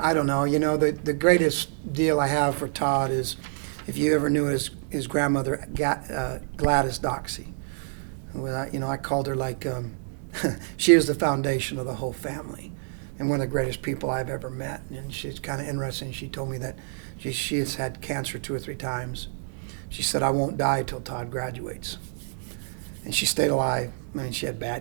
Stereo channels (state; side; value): silent; left; digital silence